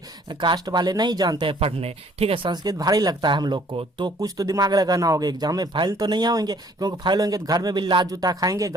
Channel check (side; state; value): both; normal; correlation 0.59